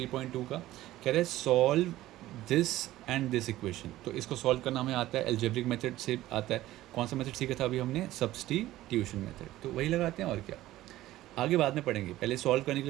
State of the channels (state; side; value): quieter; left; 15.5 dB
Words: का। कह रहे हैं solve this and this equation. तो इसको सॉल्व करना हमें आता है, एल्जेब्रिक मेथड से आता है। कौन सा मेथड सीखा था अभी हमने? Substitution method. तो वही लगाते हैं और क्या, आगे बाद में पढ़ेंगे। पहले सॉल्व करने के